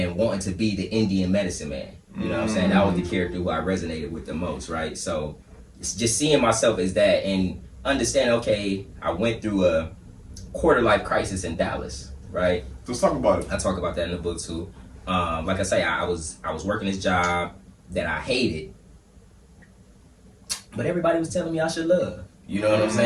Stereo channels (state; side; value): identical; both; correlation 1.00